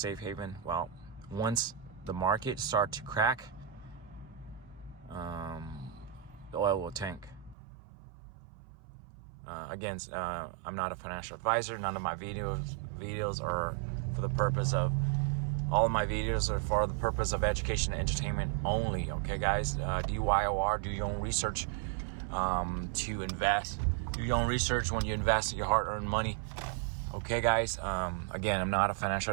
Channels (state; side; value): drops out; left; at 7.6 s